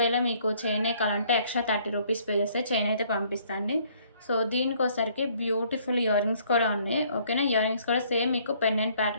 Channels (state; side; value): inverted; both; correlation -0.62